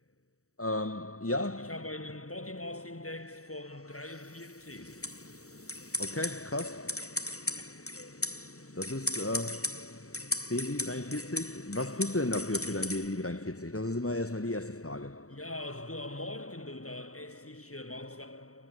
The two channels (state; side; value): late; right; 0.65 ms